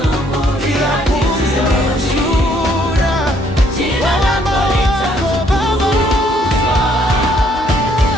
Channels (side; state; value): both; normal; correlation 0.66